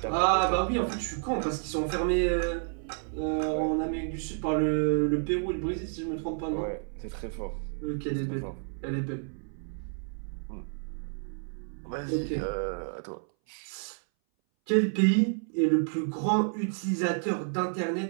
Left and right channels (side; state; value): left; silent; 58 dB below the other